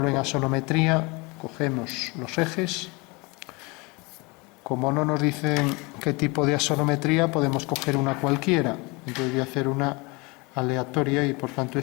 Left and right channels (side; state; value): right; quieter; 26.8 dB